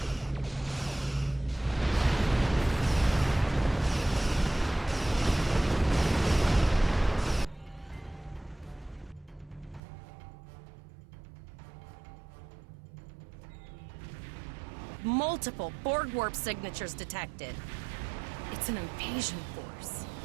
Multiple Borg warp signatures detected. It's an invasion force.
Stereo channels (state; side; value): drops out; left; at 9.8 s